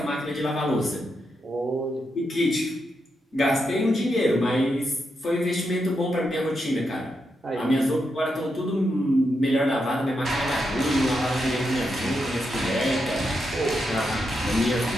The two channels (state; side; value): normal; both; correlation 0.84